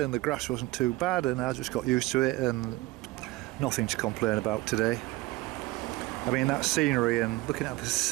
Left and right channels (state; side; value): quieter; left; 19.5 dB